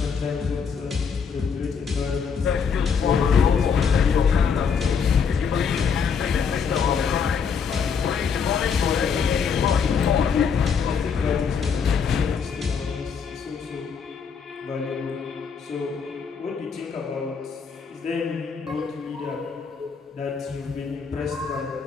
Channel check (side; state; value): right; quieter; 6.3 dB